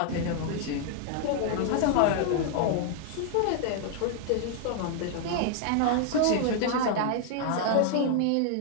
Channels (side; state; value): both; different; correlation 0.00